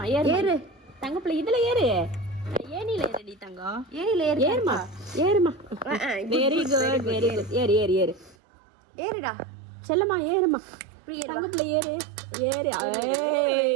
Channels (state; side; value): drops out; left; at 8.3 s